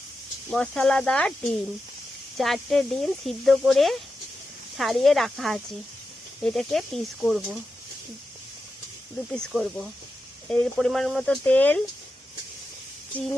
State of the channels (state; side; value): normal; both; correlation 0.90